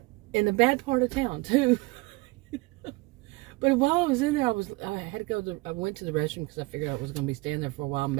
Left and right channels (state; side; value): quieter; left; 23.6 dB